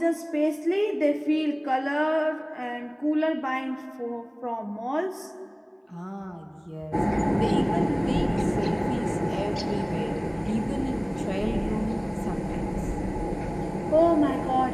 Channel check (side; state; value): both; identical; correlation 1.00